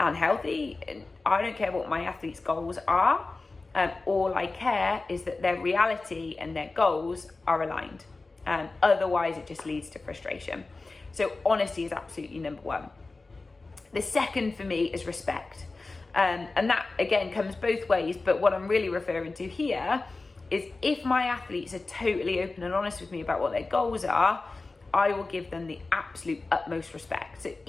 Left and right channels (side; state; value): right; quieter; 3.5 dB